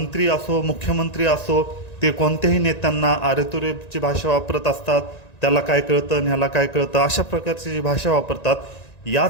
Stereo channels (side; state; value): right; late; 1.9 ms